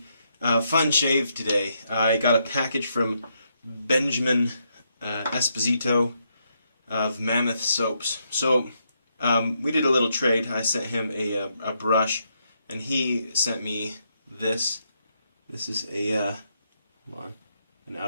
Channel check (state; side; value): inverted; both; correlation -0.78